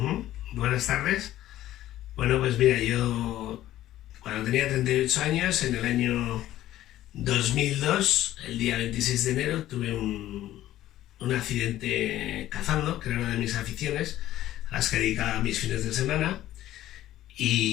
Buenas tardes. Bueno, pues mira, yo cuando tenía 38 años, en el año 2002, el día 26 de enero, tuve un accidente cazando, que era una de mis aficiones, a las que dedicaba mis fines de semana,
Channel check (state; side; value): quieter; right; 13.9 dB